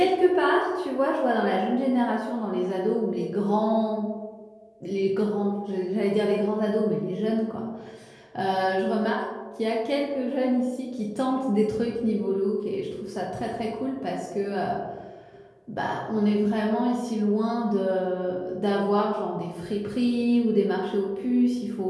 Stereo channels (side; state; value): both; identical; correlation 1.00